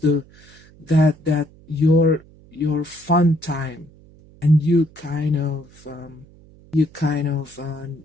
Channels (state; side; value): noise; right; hum, 25 dB below the sound